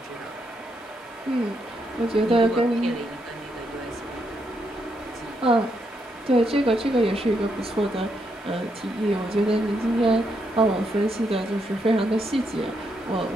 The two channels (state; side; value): normal; both; correlation 0.79